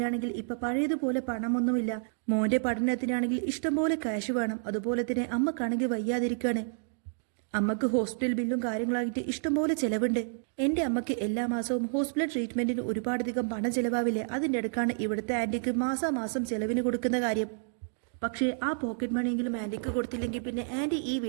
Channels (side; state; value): left; silent; digital silence